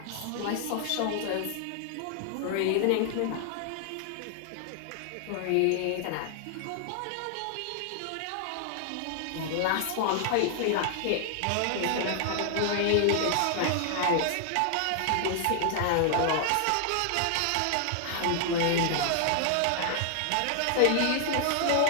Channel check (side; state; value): both; different; correlation 0.00